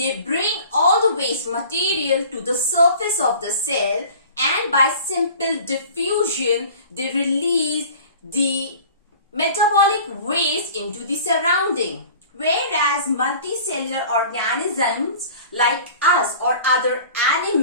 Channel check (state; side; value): inverted; both; correlation -0.44